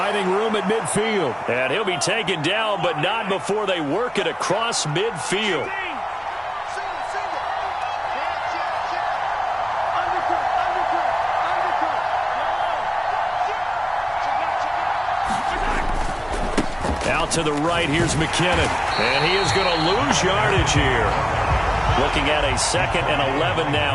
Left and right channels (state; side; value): identical; both; correlation 1.00